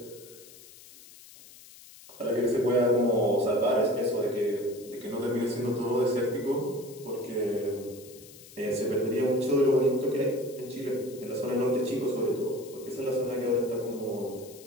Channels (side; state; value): left; noise; hiss, 20 dB below the sound